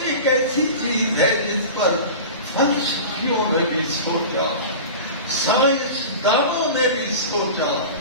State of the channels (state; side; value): inverted; both; correlation -0.32